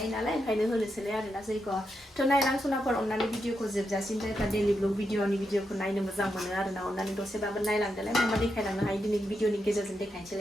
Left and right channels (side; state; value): both; normal; correlation 0.84